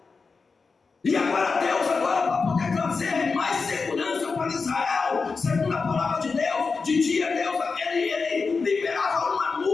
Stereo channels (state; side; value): quieter; right; 4.6 dB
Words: E agora Deus, para poder trazer mais segurança para Israel, segundo a palavra de Deus, de dia Deus, ele liberava uma